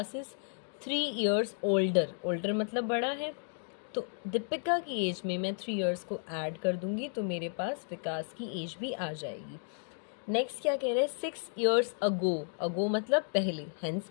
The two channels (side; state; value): right; silent; 56 dB below the other